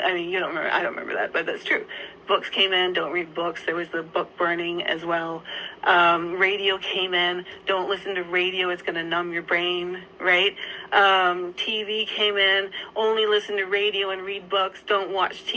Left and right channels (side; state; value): both; identical; correlation 1.00